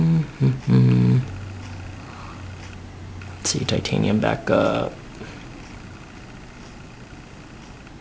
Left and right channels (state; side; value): identical; both; correlation 1.00